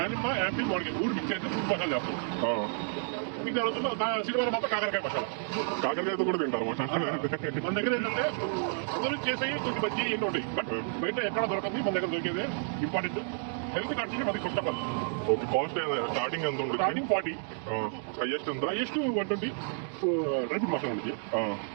యాపిల్ మామిడికాయ మూడు మిక్స్ చేసి ఫ్రూట్ మసాలా చేస్తాం. ఇంకా శనివారం మాత్రం కాకరకాయ మసాలా. కాకరకాయతో కూడా తింటారు మసాలా. మన దగ్గర ఏంటంటే అందరూ చేసేవి చిన్న బజ్జీ ఎన్నో ఉంటాయి. బట్ బయట ఎక్కడ దొరకదు, మన దగ్గర దొరికేది ఇంపార్టెంట్. హెల్త్ కంటే మనకి first of all. Okay, cost starting ఎంత ఉంటుంది? స్టార్టింగ్ 40. హైయెస్ట్ ఎంత? హైయెస్ట్ 120. డ్రై ఫ్రూట్ మసాలా ఉంది.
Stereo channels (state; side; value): silent; left; 57 dB below the other